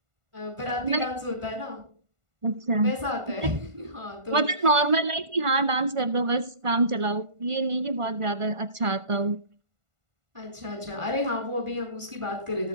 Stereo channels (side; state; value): left; late; 1.5 ms